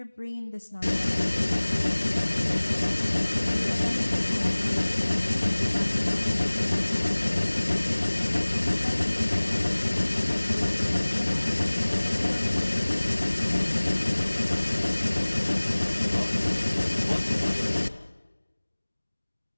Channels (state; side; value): inverted; both; correlation -1.00